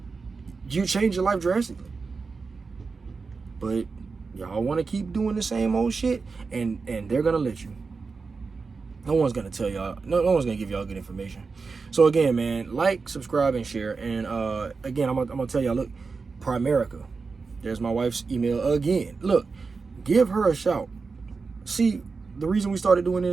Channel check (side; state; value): left; quieter; 4.6 dB